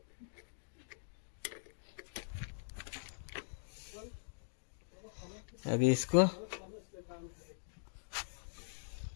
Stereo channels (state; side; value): silent; right; digital silence